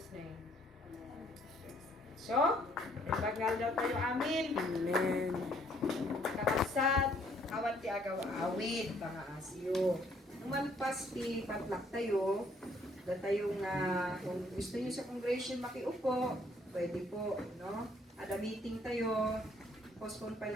name. So, nagbagal daw tayo amin. Amen. Kakabsat, awan ti agaw awit, mga asyo. Nung malpas ti patlak tayo, da tayong kung gusto niyo sa congregation makiupo, pwede po, no? Ada meeting tayo, postpone pa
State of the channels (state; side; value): normal; both; correlation 0.65